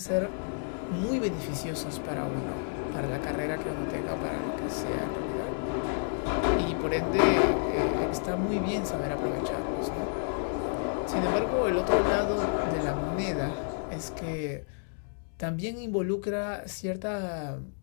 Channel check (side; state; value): right; silent; digital silence